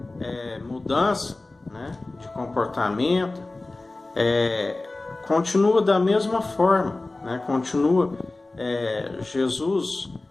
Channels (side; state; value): right; quieter; 3.0 dB